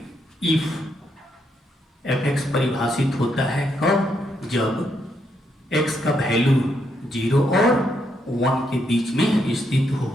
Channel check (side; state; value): both; normal; correlation 0.77